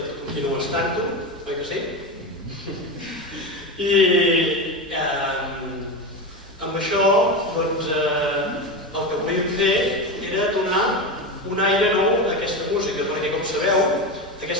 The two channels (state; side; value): normal; both; correlation 0.19